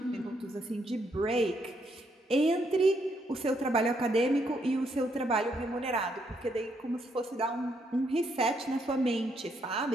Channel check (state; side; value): normal; both; correlation 0.75